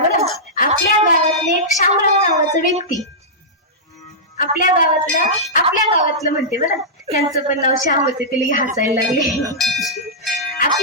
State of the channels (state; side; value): normal; both; correlation -0.13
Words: आपल्या गावातले एक शामराव नावाचा व्यक्ती, आपल्या गावातलं म्हणते बरं, त्यांचं पण नाव श्याम होते, तिला हसायला लागले.